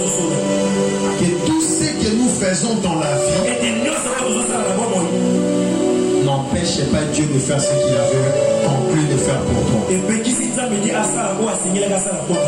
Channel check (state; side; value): identical; both; correlation 1.00